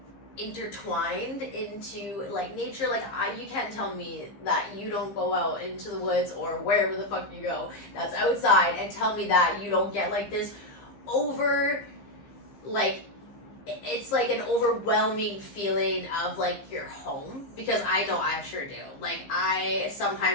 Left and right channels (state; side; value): late; right; 15 ms